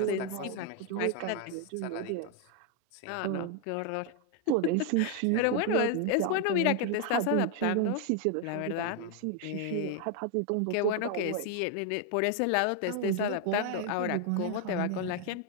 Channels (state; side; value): different; both; correlation 0.00